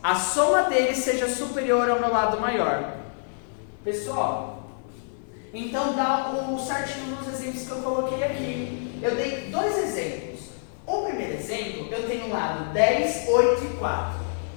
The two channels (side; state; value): right; silent; digital silence